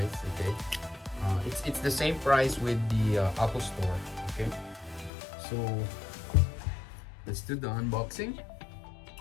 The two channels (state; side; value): drops out; right; at 5.1 s